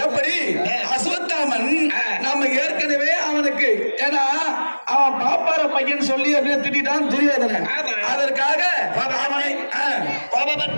எப்படி? அஸ்வத்தாமன் நாம ஏற்கனவே அவனுக்கு, ஏன்னா அவன் பாப்பார பையன் சொல்லி அப்படியே திட்டான் துரியோதனன். அதற்காக அவனை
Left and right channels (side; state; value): both; inverted; correlation -1.00